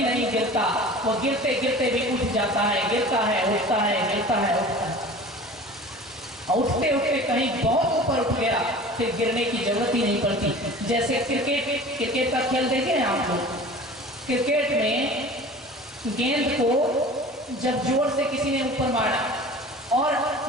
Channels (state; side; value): normal; both; correlation 0.40